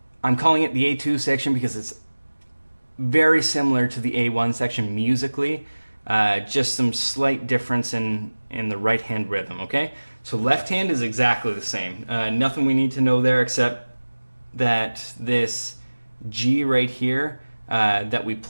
calling it the A2 section because it's very similar to the A1 section musically, just some slight difference in the right hand rhythm, okay? So left hand is exactly the same. Nothing we need to know there except that this G right here that we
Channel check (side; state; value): both; inverted; correlation -1.00